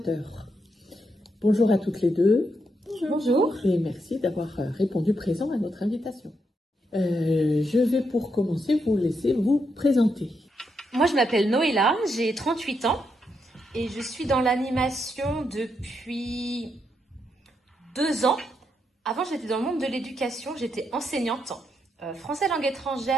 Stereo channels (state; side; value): normal; both; correlation 0.80